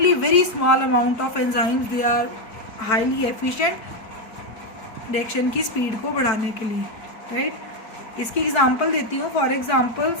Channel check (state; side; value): late; right; 4.6 ms